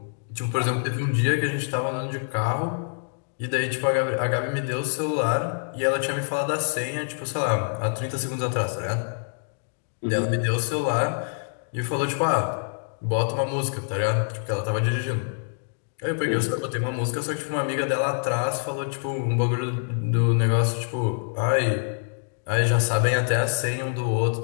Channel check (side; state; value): right; silent; digital silence